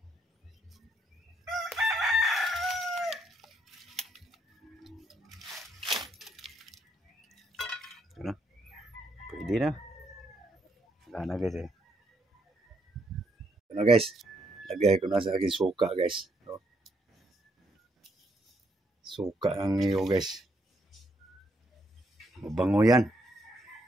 Ano? Pwede na. Wala na guys eh. Ano guys? Lagay ko na sa aking suka guys. So, suka ang niyo guys. Mabango yan.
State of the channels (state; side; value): normal; both; correlation 0.74